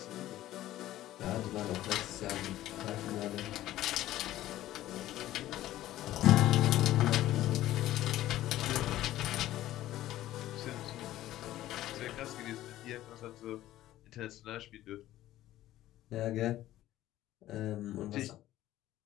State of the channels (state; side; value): quieter; right; 14.4 dB